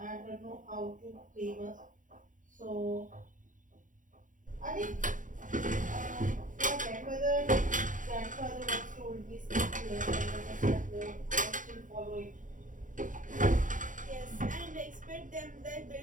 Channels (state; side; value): late; left; 0.38 ms